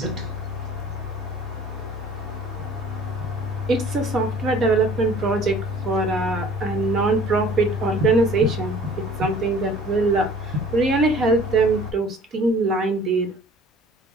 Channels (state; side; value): normal; both; correlation 0.49